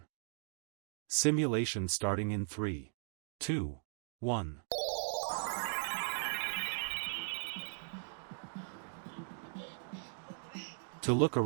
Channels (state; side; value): silent; left; digital silence